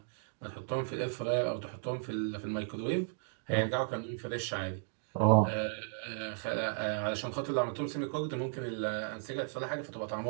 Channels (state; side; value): silent; left; digital silence